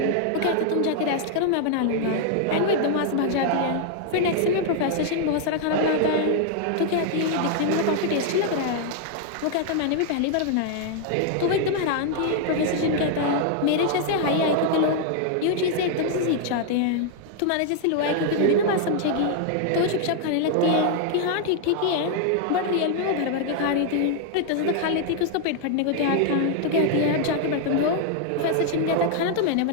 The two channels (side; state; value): both; different; correlation 0.00